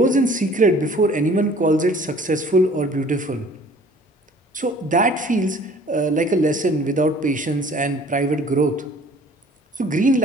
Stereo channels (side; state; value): both; normal; correlation 0.51